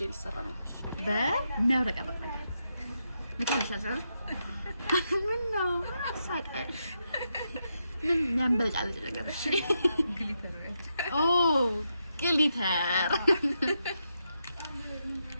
ሊሰራ ነው በሚያብረቀርቅ ነገር ምታልሻለሽ። ምን ነው ሳቀሽ? ምን ያንበለጫለጭ ነገር? እሺ ግሊተር ኦ ግሊተር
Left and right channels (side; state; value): both; inverted; correlation -0.83